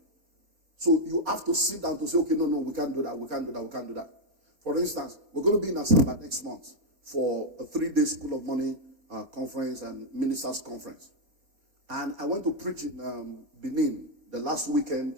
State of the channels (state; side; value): late; left; 4.4 ms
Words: So you have to sit down to say, okay, no, we can't do that, we can't do that, we can't do that. For instance, we're going to be in Asaba next month for a 3-day School of Money conference and ministers conference. And I went to preach in Benin the last weekend,